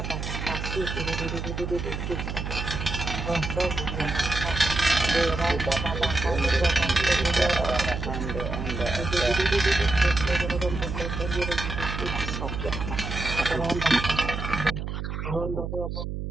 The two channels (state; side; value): noise; right; hum, 5 dB below the sound